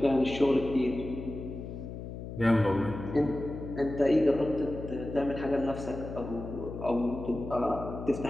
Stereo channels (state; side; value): noise; left; hum, 9 dB below the sound